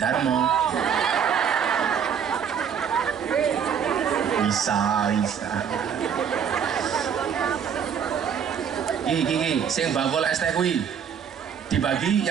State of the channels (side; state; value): left; quieter; 7.7 dB